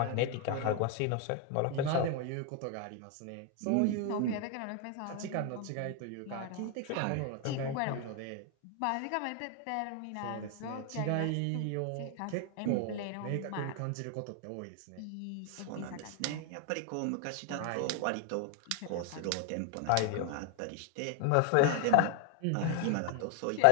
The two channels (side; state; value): both; different; correlation 0.01